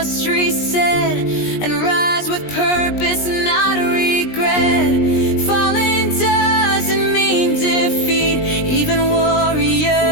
reset and rise with purpose, not regret. Falling doesn't mean defeat, even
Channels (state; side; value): late; right; 20 ms